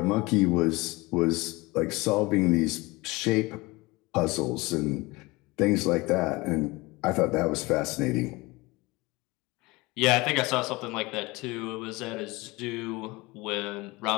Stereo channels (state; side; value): quieter; right; 23.0 dB